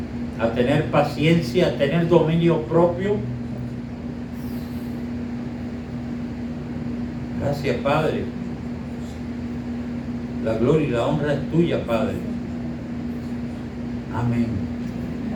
a tener paciencia, a tener dominio propio. Gracias, Padre. La gloria y la honra es tuya, Padre. Amén.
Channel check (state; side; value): identical; both; correlation 1.00